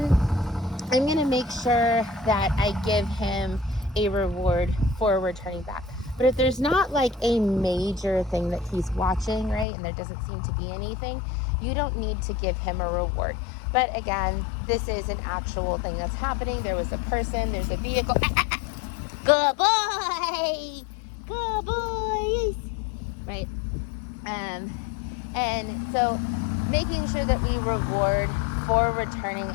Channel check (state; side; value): drops out; right; at 9.7 s